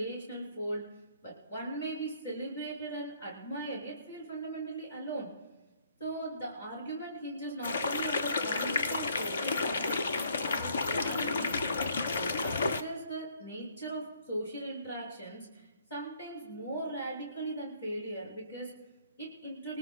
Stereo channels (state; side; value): inverted; both; correlation -0.63